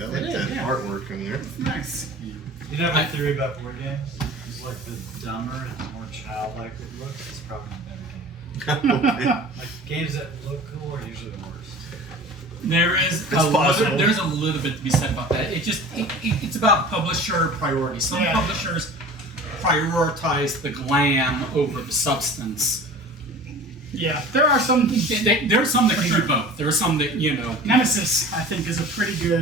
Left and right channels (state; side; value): normal; both; correlation 0.40